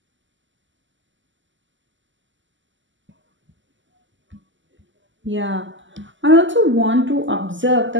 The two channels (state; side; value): late; left; 0.54 ms